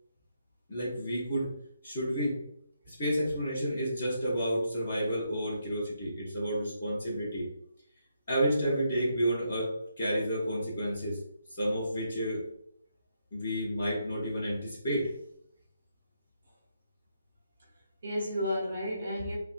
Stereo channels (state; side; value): inverted; both; correlation -0.78